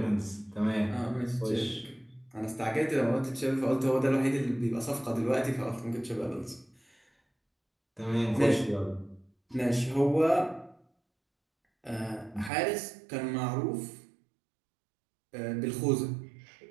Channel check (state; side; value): drops out; left; at 12.5 s